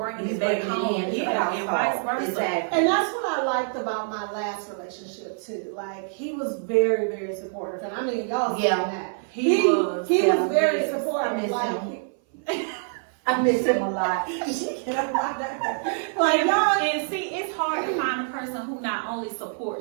it back home. Yeah, and vice versa. Exactly. And that's what I liked about my last relationship too. Like he was very, very supportive, and I mean y'all seen that. He was very supportive. I miss him a lot. Like y'all, and see, it's hard to find a person who not only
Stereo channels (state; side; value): silent; left; 58 dB below the other